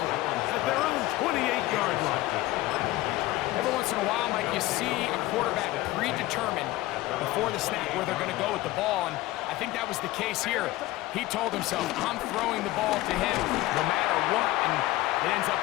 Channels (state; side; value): quieter; right; 17.5 dB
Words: at their own 28-yard line. Every once in a while, Mike, you see a quarterback predetermined before the snap where they're going to go with the ball, and I think that was the case here. He told himself, I'm throwing the ball to him no matter what, and it ends up